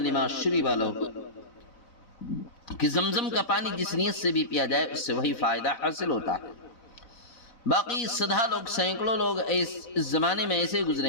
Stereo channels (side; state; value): right; late; 4.0 ms